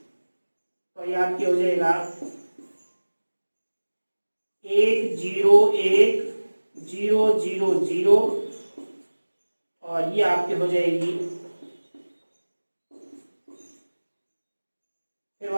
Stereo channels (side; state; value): both; inverted; correlation -1.00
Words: तो ये आपकी हो जाएगा 101,000 और ये आपकी हो जाएगी फिर